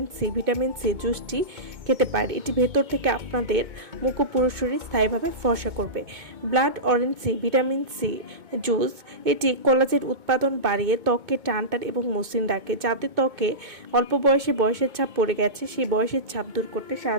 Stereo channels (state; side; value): late; left; 2.2 ms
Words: C vitamin C জুসটি খেতে পারে। এটি ভেতর থেকে আপনাদের মুখ ও পুরুষরা স্থায়ীভাবে ফর্সা করবে। Blood orange C vitamin C juice এটি কোলাজেন উৎপাদন বাড়িয়ে ত্বককে টান এবং মসৃণ রাখে। যাদের ত্বকে অল্প বয়সে বয়সের ছাপ পড়ে গেছে, সেই বয়সের ছাপ দূর করতে